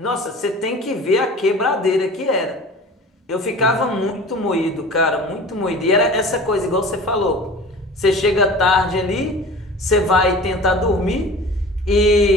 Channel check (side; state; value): both; normal; correlation 0.40